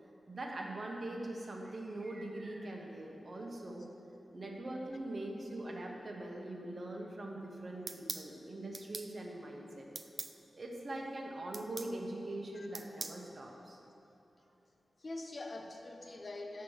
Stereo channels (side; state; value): both; normal; correlation 0.93